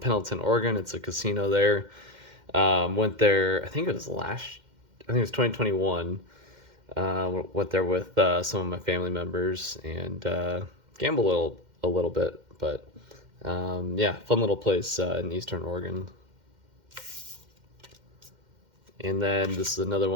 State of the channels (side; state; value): left; late; 2.1 ms